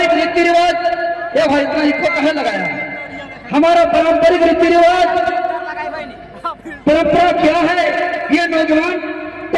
रीति रिवाज, ये भाई इतना इको कहे लगाया, हमारा पारंपरिक रीति रिवाज परंपरा क्या है, ये नौजवान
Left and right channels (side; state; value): both; identical; correlation 1.00